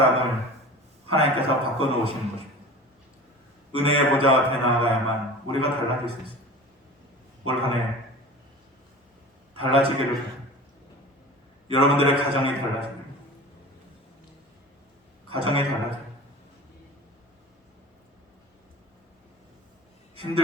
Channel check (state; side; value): normal; both; correlation 0.37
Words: 하나님께서 바꿔놓으시는 것입니다. 은혜의 보좌 앞에 나아가야만 우리가 달라질 수 있습니다. 올 한 해 달라지기를 바랍니다. 여러분들의 가정이 달라집니다. 가정이 달라져요.